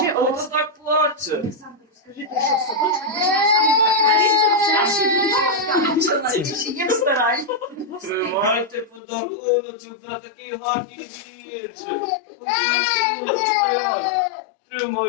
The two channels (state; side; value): drops out; right; at 9.0 s